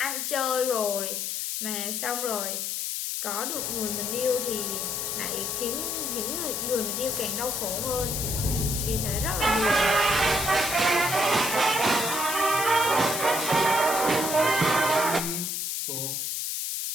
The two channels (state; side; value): noise; left; hiss, 2 dB below the sound